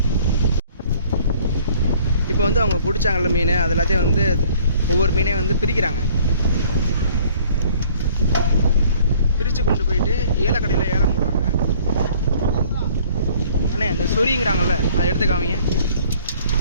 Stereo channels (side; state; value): both; inverted; correlation -0.55